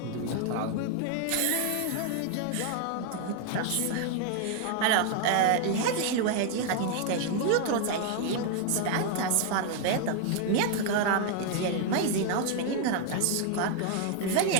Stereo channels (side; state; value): both; different; correlation 0.00